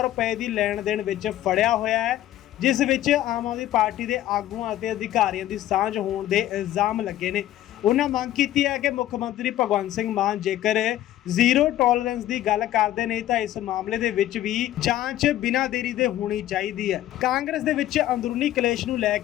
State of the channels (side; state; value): right; quieter; 13.4 dB